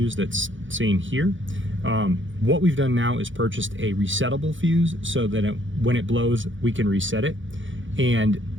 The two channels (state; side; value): late; left; 0.56 ms